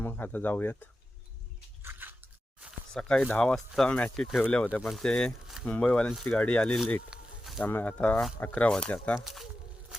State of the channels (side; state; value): both; normal; correlation 0.92